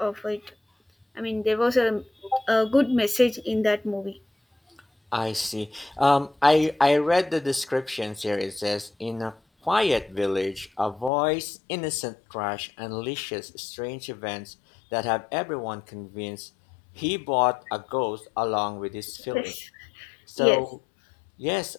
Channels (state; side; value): drops out; right; at 11.1 s